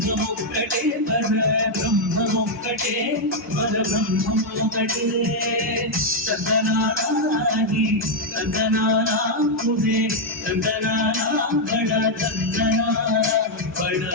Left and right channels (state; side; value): normal; both; correlation -0.01